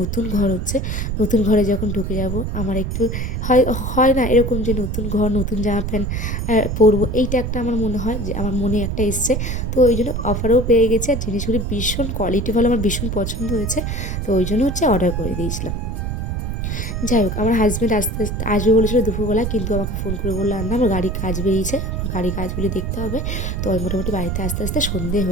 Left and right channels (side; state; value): right; noise; rumble, 2 dB below the sound